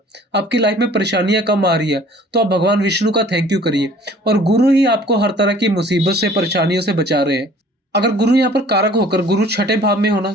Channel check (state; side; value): normal; both; correlation 0.52